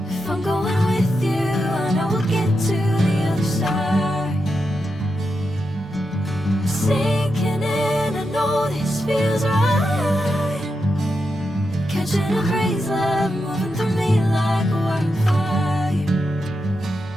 If I'm going with you, I know we'll get to the other side. Sinking in, I know this feels right. Catching a crazy love, moving through me like a wildfire,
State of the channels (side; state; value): both; normal; correlation 0.86